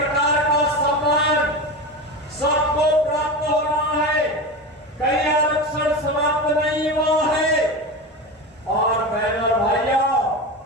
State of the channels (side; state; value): both; normal; correlation 0.24